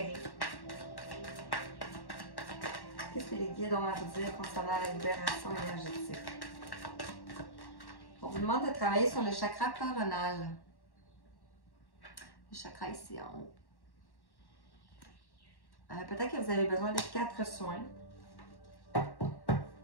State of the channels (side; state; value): right; late; 1.1 ms